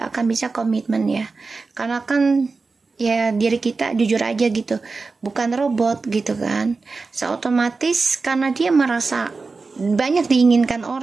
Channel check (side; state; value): left; quieter; 4.1 dB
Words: akan bisa komitmen ya, karena kan ya diri kita jujur aja gitu, bukan robot gitu kan. Otomatis karena dia merasa banyak diinginkan